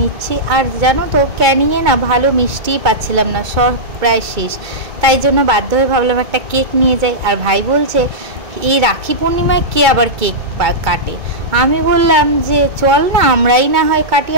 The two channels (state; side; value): late; left; 2.3 ms